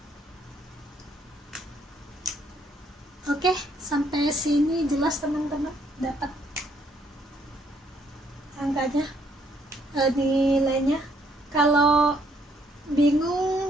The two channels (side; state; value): both; normal; correlation 0.69